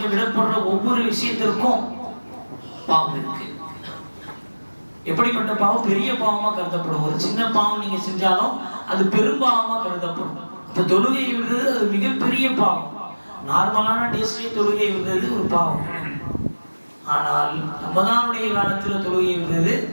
விடப்படுற ஒவ்வொரு விஷயத்திற்கும் பாவம் இருக்கு. எப்படிப்பட்ட பாவம்? பெரிய பாவமா கருதப்படும். ஒரு சின்ன பாவம் நீங்க செஞ்சாலும் அது பெரும்பாவமா கருதப்படும். அப்ப தொழுகை விடுறது அது மிகப்பெரிய பாவம். நார்மலான டேஸ்ட்லயே தொழுகை விடுறது ஒரு பாவம். ஆனால் ரமதானுடைய காலத்துல தொழுகை விடுறது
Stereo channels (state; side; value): inverted; both; correlation -1.00